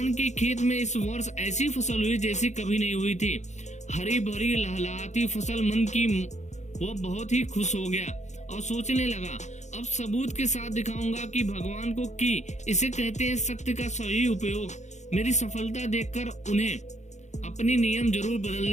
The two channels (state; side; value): late; right; 0.34 ms